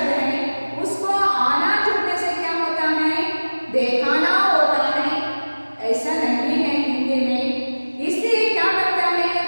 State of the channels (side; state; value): both; inverted; correlation -1.00